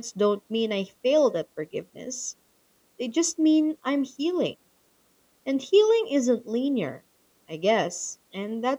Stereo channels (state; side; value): identical; both; correlation 1.00